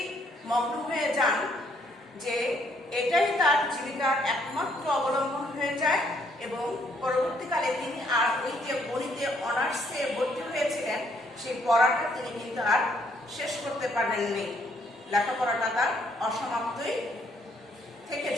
মগ্ন হয়ে যান যে এটাই তার জীবিকার একমাত্র অবলম্বন হয়ে যায় এবং পরবর্তীকালে তিনি আর ওই যে গণিতে অনার্সে ভর্তি হয়েছিলেন সেই পড়াটা তিনি কিন্তু আর শেষ করতে পারেননি। লেখাপড়াটা তার অসমাপ্তই থেকে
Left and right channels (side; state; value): both; normal; correlation 0.68